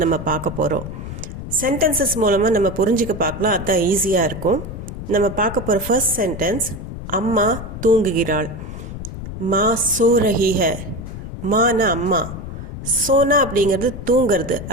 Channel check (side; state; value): left; noise; rumble, 9 dB below the sound